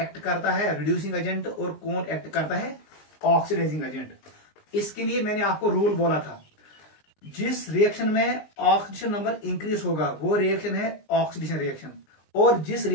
करता है रिड्यूसिंग एजेंट और कौन एक्ट करता है ऑक्सीडाइजिंग एजेंट। इसके लिए मैंने आपको रूल बोला था, जिस रिएक्शन में ऑक्सीडेशन नंबर इंक्रीज होगा वो रिएक्शन है ऑक्सीडेशन रिएक्शन, और जिस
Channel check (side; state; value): right; late; 19 ms